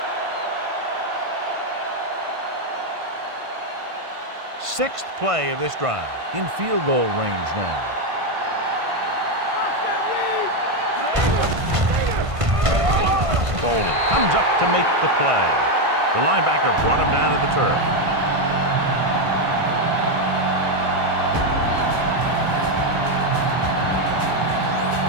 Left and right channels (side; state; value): left; late; 1.5 ms